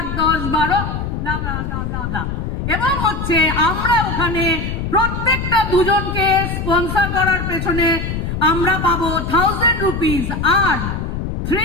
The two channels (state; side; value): noise; left; rumble, 4 dB below the sound